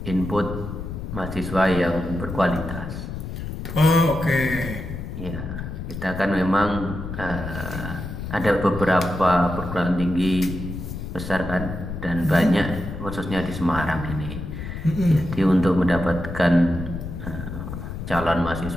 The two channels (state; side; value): noise; left; rumble, 7 dB below the sound